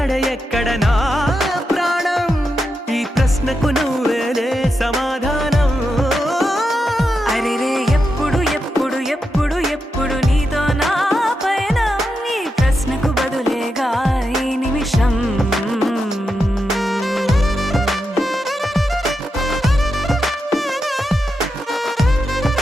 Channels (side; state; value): both; normal; correlation 0.87